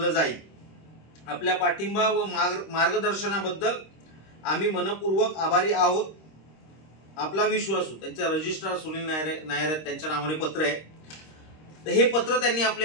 जाईल. आपल्या पाठिंबा व मार्गदर्शनाबद्दल आम्ही मनपूर्वक आभारी आहोत. आपला विश्वासू. त्यांचे रजिस्ट्रार सुनील नायर त्यांच्या नावाने पत्र आहे. तर हे पत्र त्यांनी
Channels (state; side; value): late; right; 26 ms